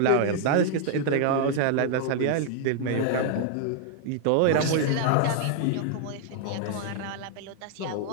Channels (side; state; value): both; different; correlation 0.00